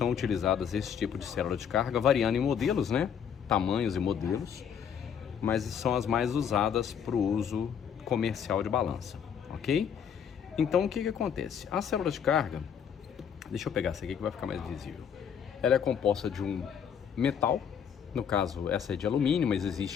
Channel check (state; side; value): quieter; right; 7.9 dB